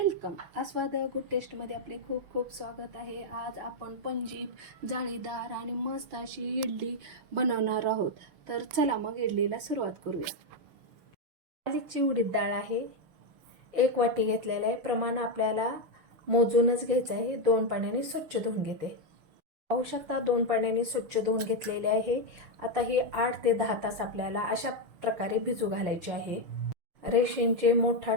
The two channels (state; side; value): late; left; 6.3 ms